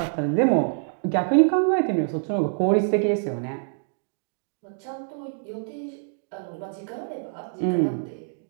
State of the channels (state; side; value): silent; left; digital silence